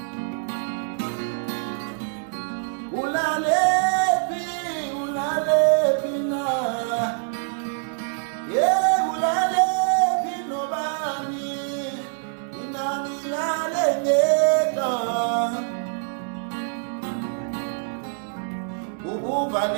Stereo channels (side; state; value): left; silent; 62 dB below the other